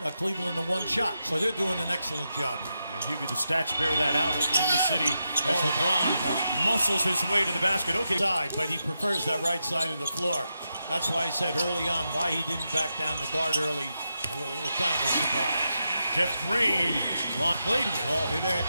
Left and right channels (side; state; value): both; inverted; correlation -0.87